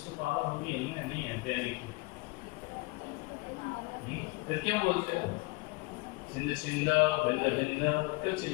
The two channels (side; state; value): right; quieter; 24.9 dB